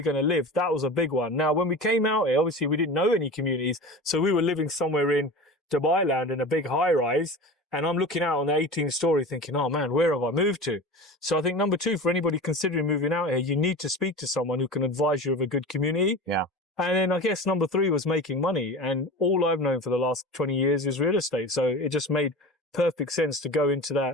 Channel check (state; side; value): normal; both; correlation 0.32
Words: going to live? That was a big one. Now, when we came out here, obviously we didn't know any communities. So we were living somewhere in Dubai land in a big high rise. And I'm looking out on the 18th story thinking, oh man, where have I moved to? So I think number two, for anybody considering moving out here, you need to speak to someone who can advise you of a good community. Yeah. And then I guess number three was making money. And all I've known for the last 20 years is real estate. So it just made perfect sense to go into